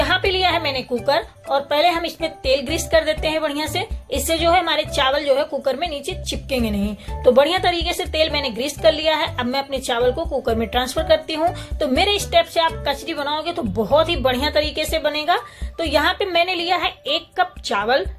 पे लिया है मैंने कुकर, और पहले हम इसमें तेल ग्रीस कर देते हैं बढ़िया से। इससे जो है हमारे चावल जो है कुकर में नीचे चिपकेंगे नहीं। तो बढ़िया तरीके से तेल मैंने ग्रीस कर लिया है। अब मैं अपने चावल को कुकर में ट्रांसफर करती हूँ। तो मेरे स्टेप से आप कचरी बनाओगे तो बहुत ही बढ़िया तरीके से बनेगा। तो यहाँ पे मैंने लिया है 1 कप चावल,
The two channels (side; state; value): both; identical; correlation 1.00